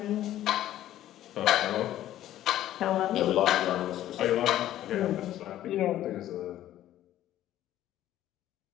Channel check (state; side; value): quieter; right; 13.0 dB